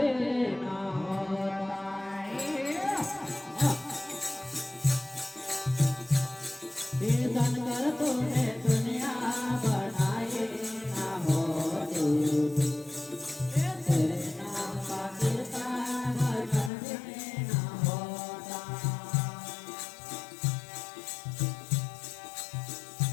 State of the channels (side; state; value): right; drops out; at 16.7 s